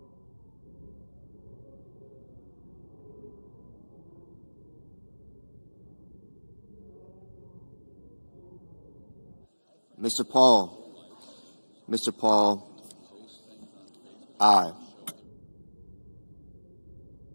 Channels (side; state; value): both; inverted; correlation -1.00